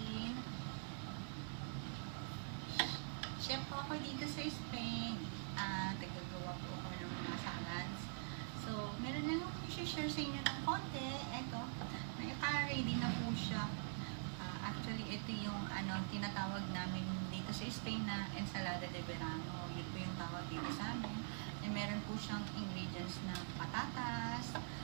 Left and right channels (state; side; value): silent; left; digital silence